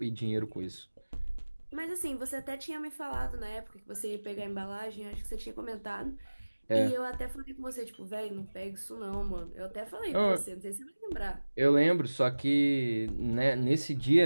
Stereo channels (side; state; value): both; inverted; correlation -1.00